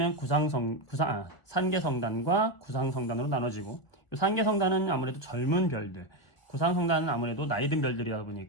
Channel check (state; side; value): late; right; 1.6 ms